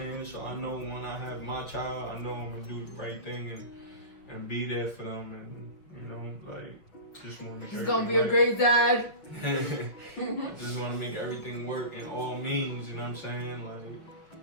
So I know when I have my child, I know I'm gonna do the right thing and be there for them, and you know, like, just want to make He's gonna be everything a great dad. I just want to make everything work in all means, you know what I'm saying? Like,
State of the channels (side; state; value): right; late; 6.0 ms